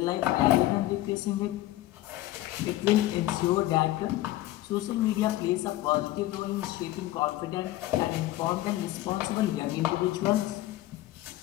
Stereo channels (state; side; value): quieter; right; 15.8 dB